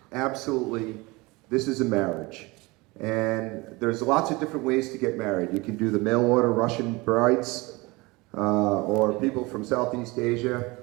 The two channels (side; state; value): left; quieter; 23.8 dB